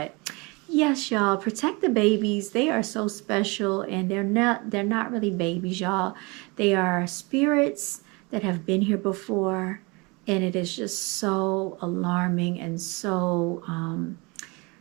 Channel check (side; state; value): left; quieter; 27.5 dB